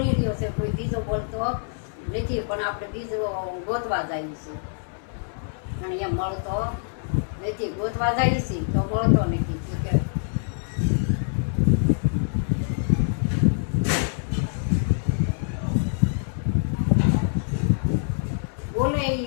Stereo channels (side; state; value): right; silent; 62 dB below the other